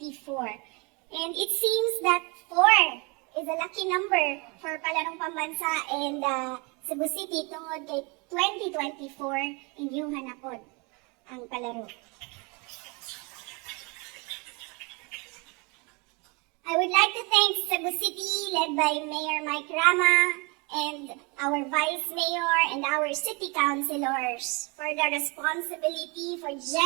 And it seems that 4 is a lucky number for Palarong Pambansa and Cebu City tungod kay 2024 inyong hanapod ang Palaro. I would like to thank Cebu City, led by Mayor Mike Rama, and our Vice Mayor and our City Councilors for the responsibility for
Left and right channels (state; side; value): quieter; left; 30.0 dB